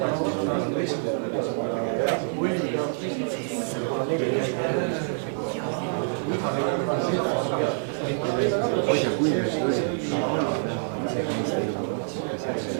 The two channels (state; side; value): silent; left; digital silence